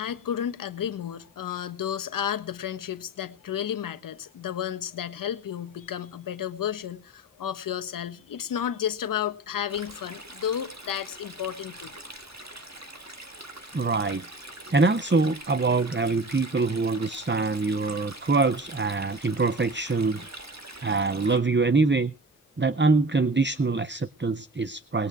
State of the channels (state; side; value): normal; both; correlation 0.36